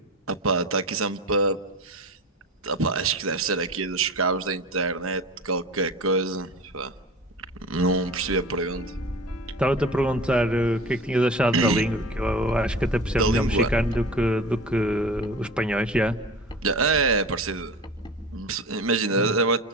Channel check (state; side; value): normal; both; correlation 0.35